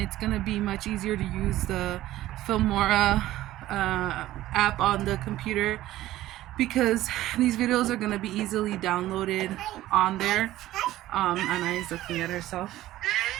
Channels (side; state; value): left; quieter; 15.1 dB